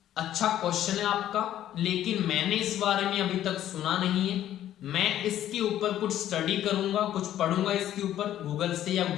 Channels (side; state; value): right; quieter; 12.0 dB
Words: अच्छा क्वेश्चन है आपका, लेकिन मैंने इस बारे में अभी तक सुना नहीं है, मैं इसके ऊपर कुछ स्टडी करूंगा, कुछ पढ़ूंगा इसके ऊपर गूगल से या